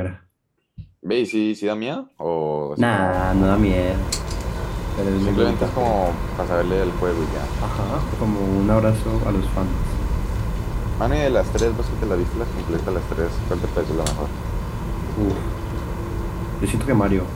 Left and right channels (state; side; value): identical; both; correlation 1.00